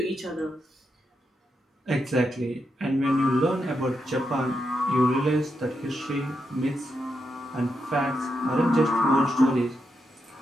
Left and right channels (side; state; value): both; normal; correlation 0.84